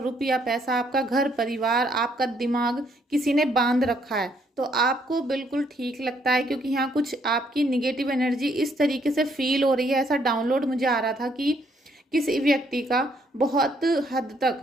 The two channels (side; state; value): both; normal; correlation 0.69